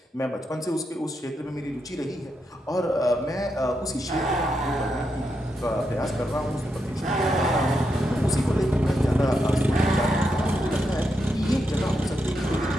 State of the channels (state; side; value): normal; both; correlation 0.83